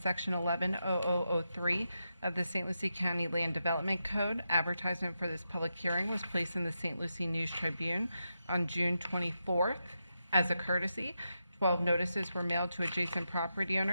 110003 of the St. Lucie County Land Development Code, advertisement for this public hearing was placed in the St. Lucie News Tribune on June 24th. As a courtesy, 12 notices were mailed to adjacent property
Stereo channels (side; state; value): both; inverted; correlation -0.87